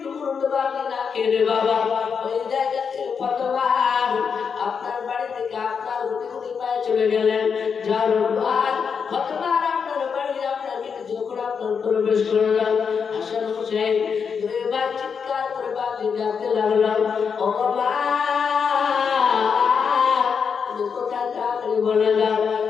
টুকরো বাদে না খেয়ে বাবা ওই জায়গা থেকে ফাতেমা আপনার বাড়ি থেকে আপনার রুটি পায়ে চলে গেলেন যার পর ফাতেমা আপনার বাড়ি আপনার গেটে যখন আপনার প্রবেশ করলেন হাসান হোসেন দুইবার চিৎকার করে বাদে ডাকতে লাগলাম ও মা তুমি কোথায় যাবে বলে দাও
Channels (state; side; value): quieter; right; 6.3 dB